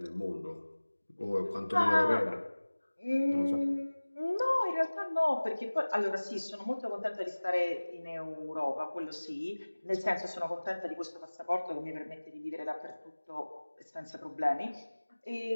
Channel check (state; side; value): inverted; both; correlation -1.00